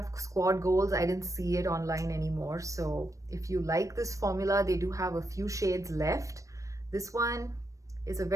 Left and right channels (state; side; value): late; left; 0.16 ms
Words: Squad Goals, I didn't see it online anymore. So if you like this formula, they do have a few shades left. This one is a